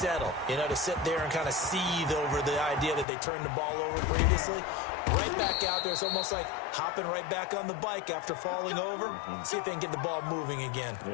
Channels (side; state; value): right; drops out; at 3.1 s